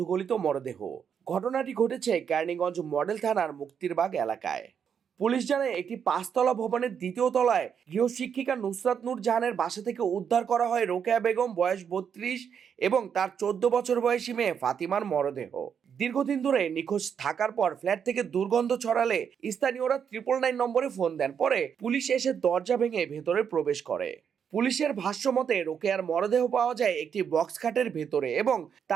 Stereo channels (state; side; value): quieter; left; 7.5 dB